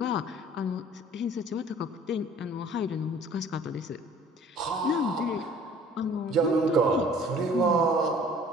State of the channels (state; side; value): normal; both; correlation 0.51